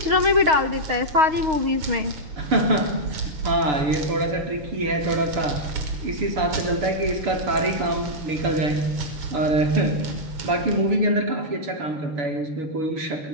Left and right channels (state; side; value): late; left; 6.4 ms